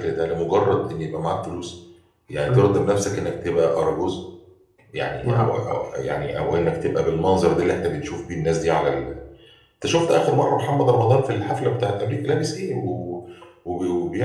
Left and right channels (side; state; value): both; identical; correlation 1.00